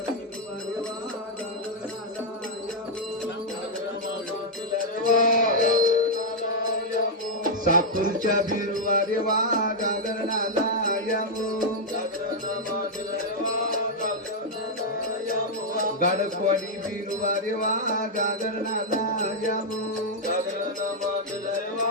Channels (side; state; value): both; normal; correlation -0.03